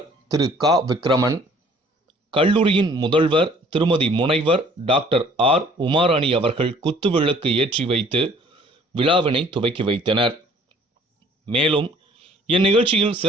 திரு கா விக்ரமன், கல்லூரியின் முதல்வர் திருமதி முனைவர் டாக்டர் ஆர் உமாராணி அவர்கள் குத்துவிளக்கு ஏற்றி வைத்து விழாவினை துவக்கி வைத்தனர். மேலும் இந்நிகழ்ச்சியில்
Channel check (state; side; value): normal; both; correlation 0.56